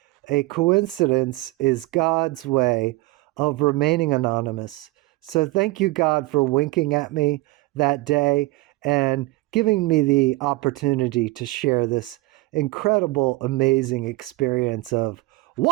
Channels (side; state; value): left; quieter; 20.5 dB